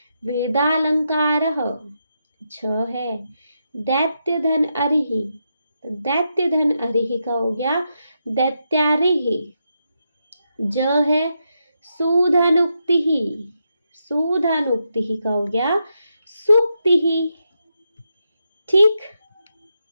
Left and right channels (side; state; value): both; inverted; correlation -0.84